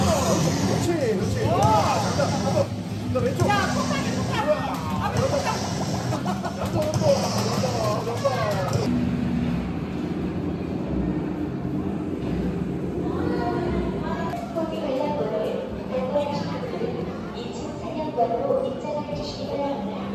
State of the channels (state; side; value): identical; both; correlation 1.00